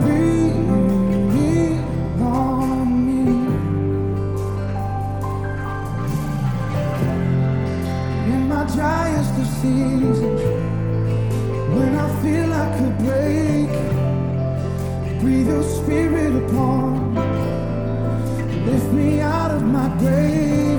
Breathe on me. In my driest of seasons, when I feel I could break, breathe your spirit upon me. Lift me out of my grave,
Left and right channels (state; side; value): identical; both; correlation 1.00